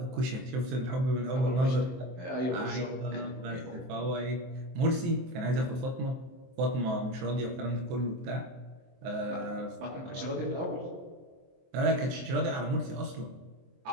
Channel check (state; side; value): late; left; 23 ms